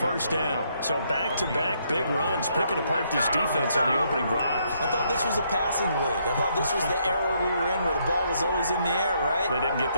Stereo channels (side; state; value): both; inverted; correlation -0.73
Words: down. So back-to-back big runs, picking apart this defense on the opening drive. I thought this was a passing league. I thought this was the era we were in where the ball was always in the air, right? They didn't get